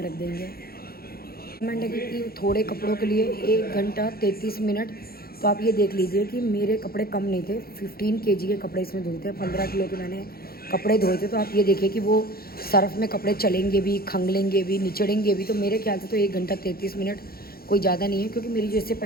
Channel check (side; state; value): right; late; 0.44 ms